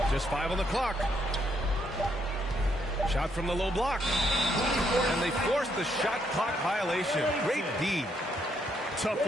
Just 5 on the clock. Shot from the low block. And they force the shot clock violation. Great D. Tough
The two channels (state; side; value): normal; both; correlation 0.74